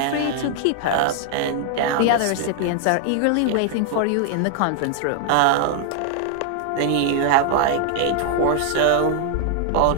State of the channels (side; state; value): both; different; correlation -0.01